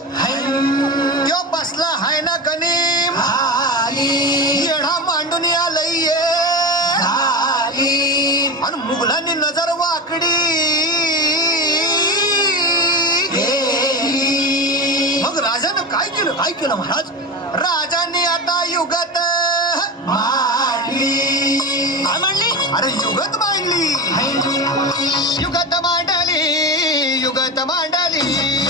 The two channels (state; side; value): normal; both; correlation 0.24